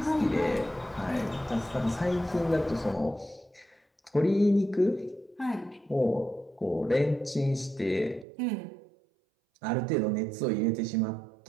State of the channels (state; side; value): drops out; left; at 8.2 s